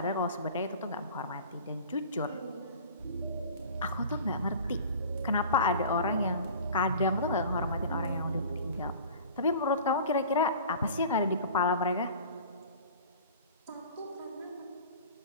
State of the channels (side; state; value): both; inverted; correlation -0.41